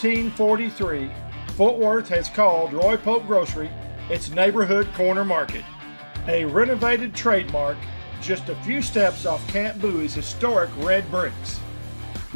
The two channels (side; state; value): both; inverted; correlation -1.00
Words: Fort Worth has called Roy Pope Grocery its neighborhood corner market. A renovated trademark just a few steps off Camp Bowie's historic red bricks.